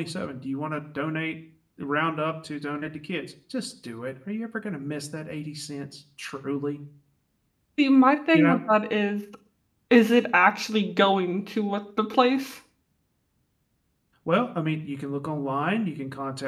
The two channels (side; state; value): both; identical; correlation 1.00